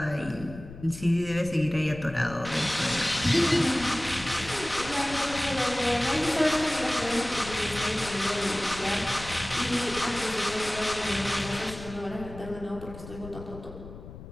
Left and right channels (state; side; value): noise; left; rumble, 14 dB below the sound